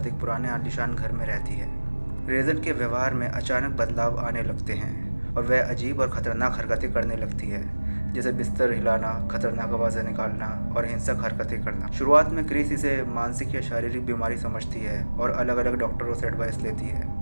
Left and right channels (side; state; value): both; inverted; correlation -1.00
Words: एक पुराने आलीशान घर में रहती है। रेजन के व्यवहार में अचानक बदलाव आने लगते हैं और वह अजीब और ख़तरनाक हरकतें करने लगती है, जैसे बिस्तर हिलाना, खतरनाक आवाज़ें निकालना और हिंसक हरकतें करना। शुरुआत में क्रिस इसे मानसिक या शारीरिक बीमारी समझती है और अलग अलग डॉक्टरों से एडवाइस लेती